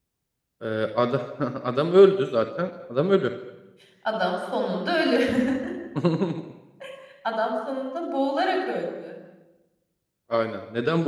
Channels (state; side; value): identical; both; correlation 1.00